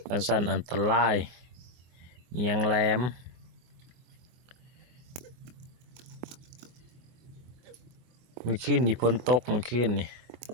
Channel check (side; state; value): left; late; 23 ms